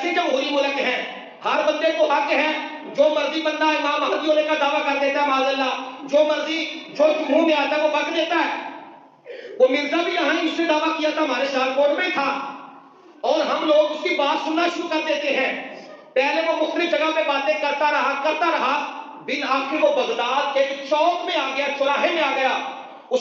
جمہوری ملک ہے. ہر بندے کو حق ہے، جو مرضی بندہ امام مہدی ہونے کا دعویٰ کر دیتا ہے، معاذ اللہ، جو مرضی جو منہ میں آتا ہے وہ بک دیتا ہے. وہ مرزا بھی یہاں اس نے دعویٰ کیا تھا، ہمارے سیالکوٹ میں تھا، اور ہم لوگ اس کی بات سننا شروع کر دیتے ہیں. پہلے وہ مختلف جگہ پہ باتیں کرتا رہا، بالآخر وہ بغداد کے چوک میں آ گیا، چوراہے میں آ گیا.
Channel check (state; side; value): identical; both; correlation 1.00